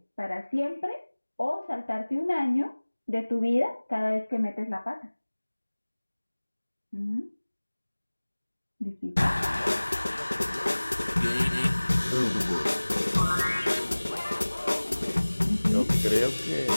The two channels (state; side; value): inverted; both; correlation -1.00